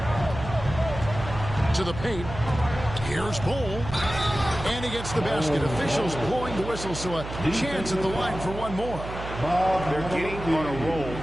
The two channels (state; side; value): noise; right; hum, 9 dB below the sound